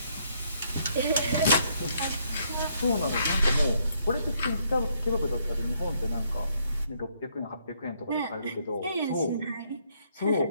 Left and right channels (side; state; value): both; inverted; correlation -0.70